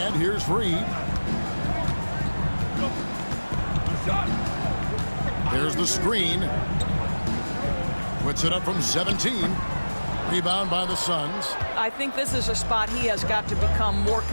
here's Reed. There's the screen. Puts it up from 17. Rebound by the Suns. I think this is a spot he has got to become more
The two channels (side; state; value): both; inverted; correlation -1.00